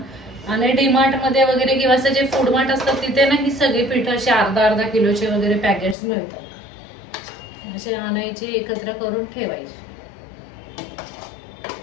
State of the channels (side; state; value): right; drops out; at 6.0 s